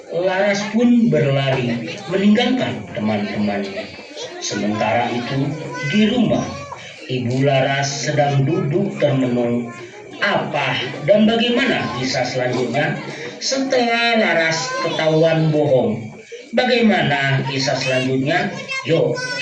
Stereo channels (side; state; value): both; identical; correlation 1.00